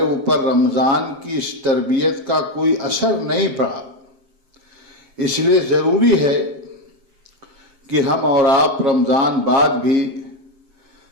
اوپر رمضان کی اس تربیت کا کوئی اثر نہیں پڑا۔ اس لیے ضروری ہے کہ ہم اور آپ رمضان بعد بھی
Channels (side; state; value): left; late; 7.6 ms